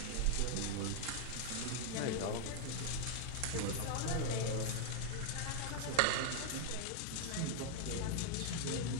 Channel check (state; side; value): different; both; correlation 0.00